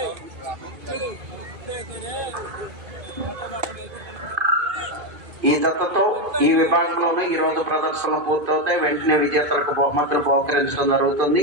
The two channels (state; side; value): late; left; 2.5 ms